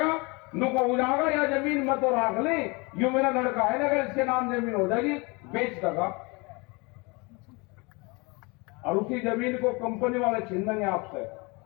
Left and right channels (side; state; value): right; quieter; 27.8 dB